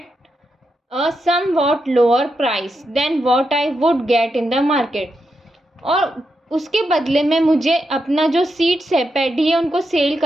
a somewhat lower price than what I would get in the market, और उसके बदले में मुझे अपना जो सीड्स है, पैडी है, उनको सेल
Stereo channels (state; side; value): normal; both; correlation 0.85